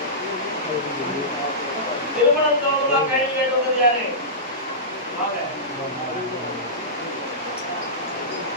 திருமணம் தோறுமா கைது கேட்டது யாரு?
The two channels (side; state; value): both; normal; correlation -0.18